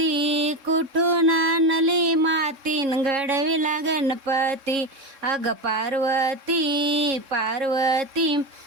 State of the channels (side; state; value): left; late; 3.7 ms